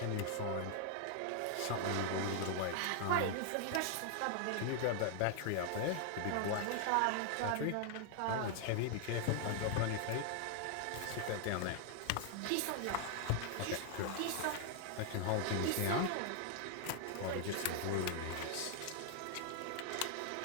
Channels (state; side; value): different; both; correlation 0.00